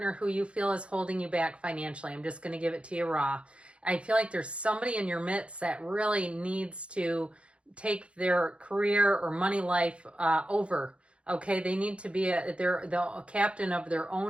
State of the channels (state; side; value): late; left; 0.059 ms